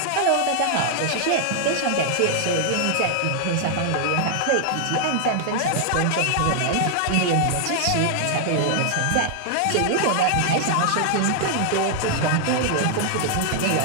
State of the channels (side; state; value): both; different; correlation 0.00